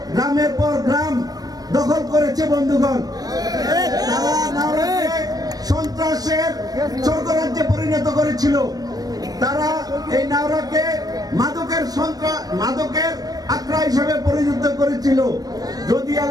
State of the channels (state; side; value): late; left; 0.19 ms